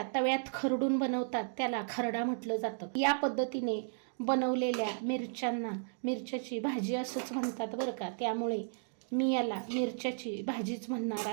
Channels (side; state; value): left; silent; digital silence